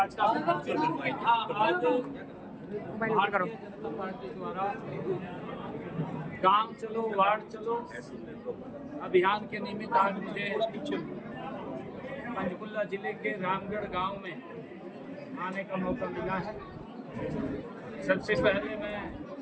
Mobile ऊपर करो। जनता पार्टी द्वारा गांव चलो वार्ड चलो अभियान के निमित्त आज मुझे पंचकुला जिले के रामगढ़ गांव में आने का मौका मिला है। सबसे पहले मैं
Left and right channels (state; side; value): identical; both; correlation 1.00